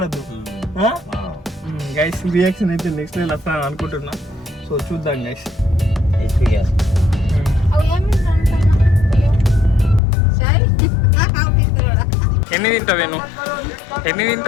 గైస్ రియాక్షన్ అయితే నెక్స్ట్ లెవెల్ వస్తాను అనుకుంటున్నా. సో చూద్దాం గైస్. ఎన్ని తింటావు నేను? ఎన్ని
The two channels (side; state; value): right; drops out; at 10.0 s